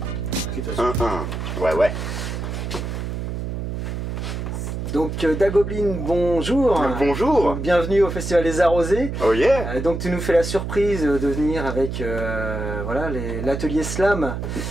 1-1. Ouais. Donc Dagoblin, bonjour. Bonjour. Bienvenue au Festival des Arrosés. Oh yeah. Donc tu nous fais la surprise de venir avec voilà, l'atelier Slam.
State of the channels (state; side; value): noise; right; hum, 4 dB below the sound